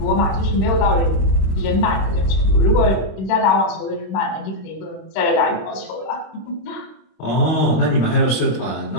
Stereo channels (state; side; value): late; right; 26 ms